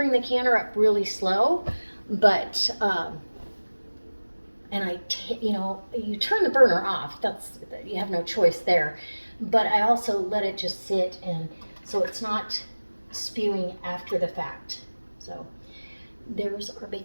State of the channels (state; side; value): inverted; both; correlation -1.00